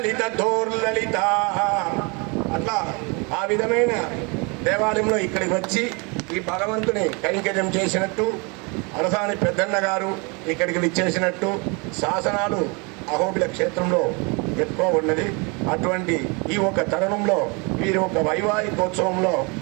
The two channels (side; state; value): left; quieter; 30.8 dB